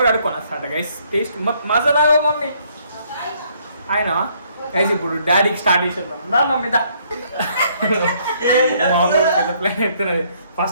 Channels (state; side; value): inverted; both; correlation -0.67